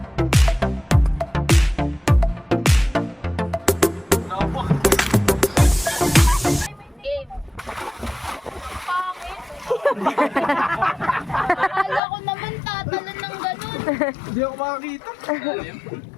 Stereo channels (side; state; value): right; drops out; at 12.0 s